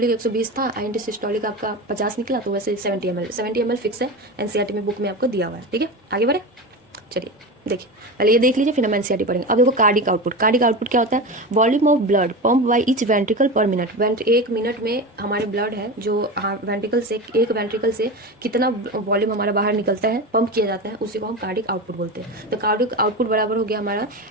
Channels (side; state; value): both; normal; correlation 0.24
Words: 120 था, इन सिस्टोलिक आपका 50 निकला, तो वैसे 70 ml फिक्स है, एनसीईआरटी में बुक में आपको दिया हुआ है, ठीक है। आगे बढ़े, चलिए देखिए, पहले ये देख लीजिए फिर हम एनसीईआरटी पढ़ेंगे। अब देखो कार्डिक आउटपुट क्या होता है, volume of blood pump by each ventricle पर मिनट। एक मिनट में हमारे ब्लड है जो वेंट्रिकल से, एक वेंट्रिकल से कितना वॉल्यूम हमारा बाहर निकलता है, पंप किया जाता है, उसी को हम कार्डिक आउटपुट बोलते हैं। तो कार्डिक आउटपुट बराबर हो गया हमारा